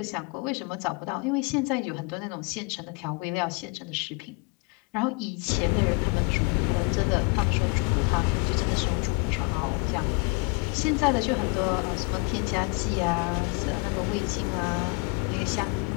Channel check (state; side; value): quieter; right; 31.9 dB